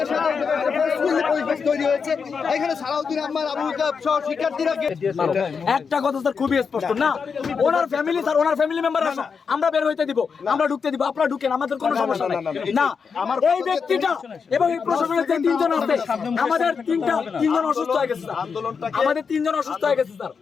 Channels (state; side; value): quieter; right; 5.8 dB